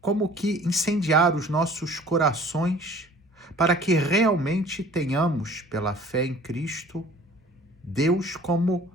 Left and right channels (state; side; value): normal; both; correlation 0.49